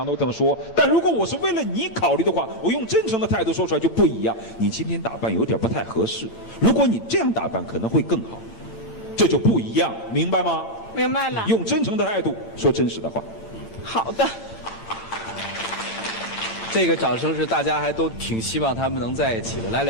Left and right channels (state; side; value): late; right; 8.6 ms